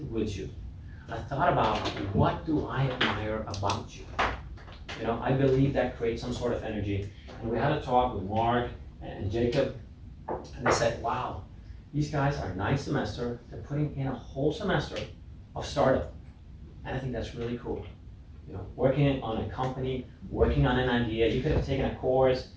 with you. I thought about what do I admire about you? I believe that creates some sort of energy. And we had a talk with Mark and Jacob, and they said, wow, these guys are ninth semester, they're putting in a whole semester of startup. And I think that's really cool. Working on a company, working on an idea, you could have taken a course,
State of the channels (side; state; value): both; identical; correlation 1.00